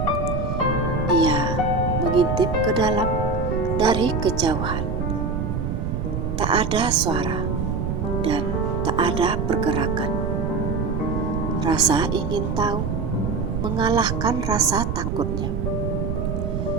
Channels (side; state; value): right; noise; rumble, 1 dB below the sound